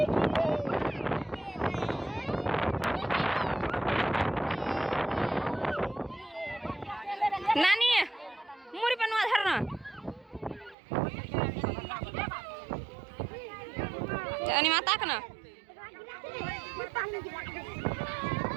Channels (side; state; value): left; drops out; at 10.8 s